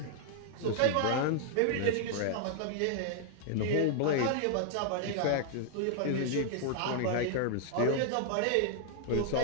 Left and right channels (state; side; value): different; both; correlation -0.01